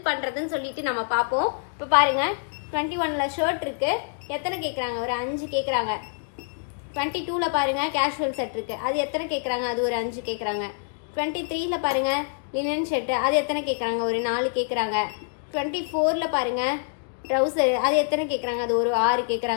பண்றதுன்னு சொல்லிட்டு நம்ம பார்ப்போம். இப்போ பாருங்க, 21ல ஷர்ட் இருக்கு. எத்தனை கேட்குறாங்க? ஒரு 5 கேட்குறாங்க. 22ல பாருங்க கேஷுவல் செட் இருக்கு. அது எத்தனை கேட்குறாங்க? அது ஒரு 5 கேட்குறாங்க. 23ல பாருங்க லினன் ஷர்ட். அது எத்தனை கேட்குறாங்க? ஒரு 4 கேட்குறாங்க. 24ல பாருங்க ட்ரௌசர். அது எத்தனை கேட்குறாங்க? அது ஒரு 6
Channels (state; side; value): silent; right; digital silence